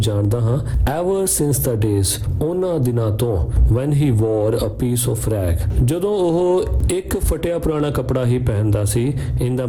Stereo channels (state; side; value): identical; both; correlation 1.00